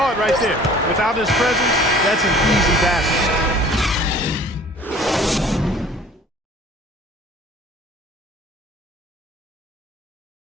it right there. Without his presence, that's an easy basket.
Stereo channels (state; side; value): normal; both; correlation 0.50